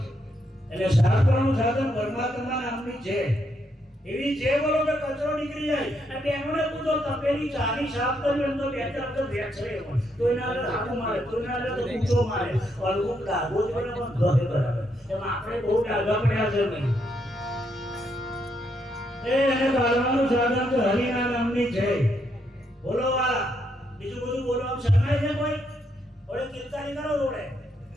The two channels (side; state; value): both; normal; correlation 0.77